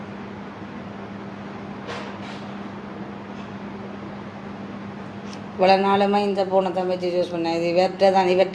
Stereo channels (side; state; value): both; identical; correlation 1.00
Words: இவ்வளோ நாளுமே இந்த ஃபோனை தான் வச்சு யூஸ் பண்ணேன். இது